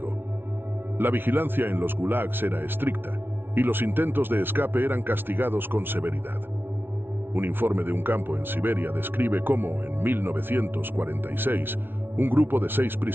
La vigilancia en los gulags era estricta y los intentos de escape eran castigados con severidad. Un informe de un campo en Siberia describe cómo, en 1946, un grupo de 6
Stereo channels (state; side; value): late; left; 0.11 ms